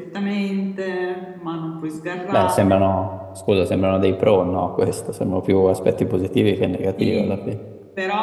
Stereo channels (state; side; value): identical; both; correlation 1.00